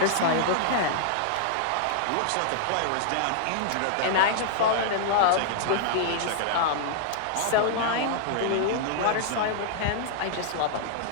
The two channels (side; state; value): both; different; correlation -0.01